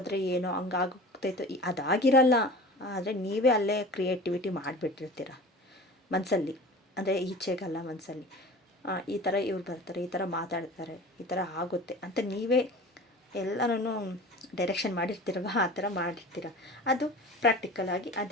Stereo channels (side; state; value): both; normal; correlation 0.38